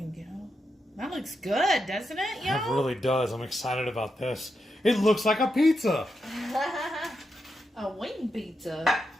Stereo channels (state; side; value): normal; both; correlation 0.85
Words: go. That looks good, doesn't it, y'all? It really does. I'm excited about this. It looks like a pizza. A wing pizza.